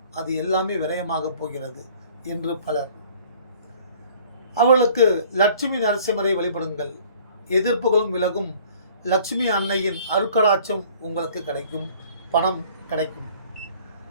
அது எல்லாமே விரயமாக போகிறது என்று பலர். அவர்களுக்கு லட்சுமி நரசிம்மரை வழிபடுங்கள். எதிர்ப்புகளும் விலகும். லட்சுமி அன்னையின் அருட்கடாட்சம் உங்களுக்கு கிடைக்கும். பணம் கிடைக்கும்.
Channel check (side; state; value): both; inverted; correlation -0.53